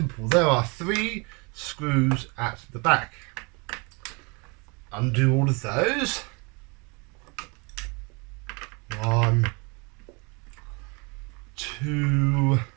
There are 3 screws at the back. Undo all of those. 1, 2,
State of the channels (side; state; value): left; quieter; 30.5 dB